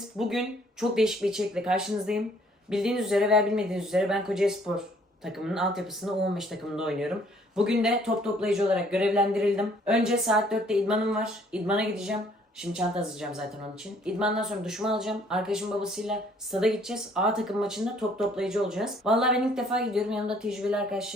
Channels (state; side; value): normal; both; correlation 0.61